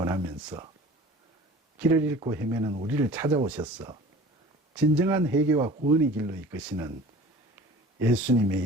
길을 잃고 헤매는 우리를 찾아오셔서 진정한 회개와 구원의 길로 이끄시는 예수님의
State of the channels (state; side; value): normal; both; correlation 0.43